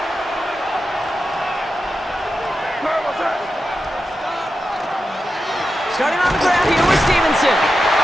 Starting on the ground here with Stevenson.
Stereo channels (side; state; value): both; normal; correlation 0.90